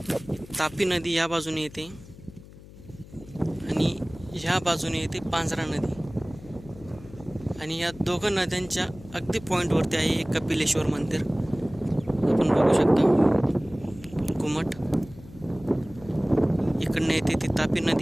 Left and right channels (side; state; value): left; noise; hum, 19 dB below the sound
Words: तापी नदी या बाजूने येते आणि ह्या बाजूने येते पांजरा नदी। आणि या दोघं नद्यांच्या अगदी पॉईंटवरती आहे एक कपिलेश्वर मंदिर, आपण बघू शकता घुमट। इकडनं येते ती तापी